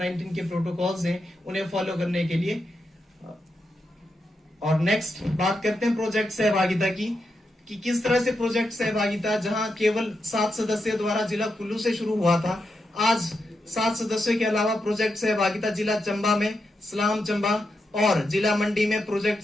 के प्रोटोकॉल्स हैं उन्हें फॉलो करने के लिए। और नेक्स्ट बात करते हैं प्रोजेक्ट सहभागिता की, कि किस तरह से प्रोजेक्ट सहभागिता जहां केवल 7 सदस्यों द्वारा जिला कुल्लू से शुरू हुआ था, आज 7 सदस्यों के अलावा प्रोजेक्ट सहभागिता जिला चंबा में, सलाम चंबा और जिला मंडी में प्रोजेक्ट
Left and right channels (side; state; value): both; normal; correlation 0.85